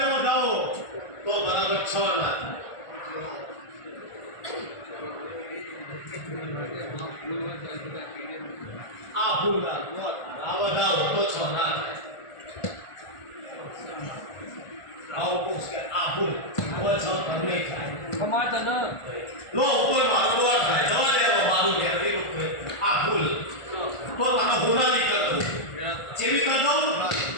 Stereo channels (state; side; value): late; right; 1.5 ms